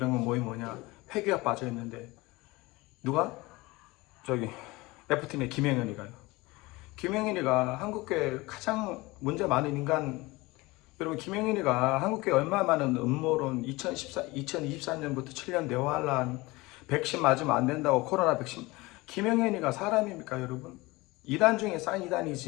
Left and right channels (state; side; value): quieter; right; 22.0 dB